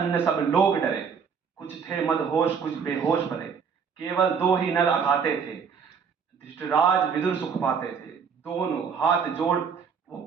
सब लोग डरे, कुछ थे मदहोश कुछ बेहोश पड़े, केवल दो ही नर अघाते थे, धृतराज विदुर सुख पाते थे, दोनों हाथ जोड़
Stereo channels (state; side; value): quieter; left; 6.3 dB